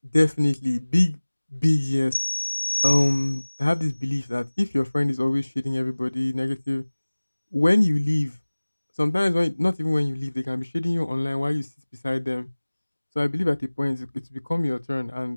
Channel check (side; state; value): both; inverted; correlation -1.00